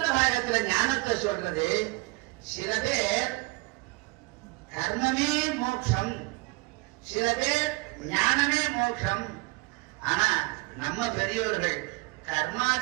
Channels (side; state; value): left; quieter; 25.6 dB